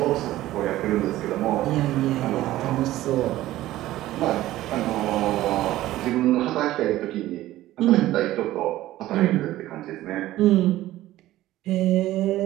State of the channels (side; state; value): left; quieter; 15.3 dB